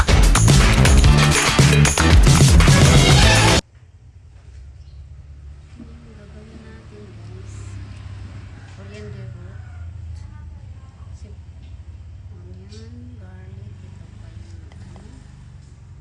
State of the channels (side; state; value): both; identical; correlation 1.00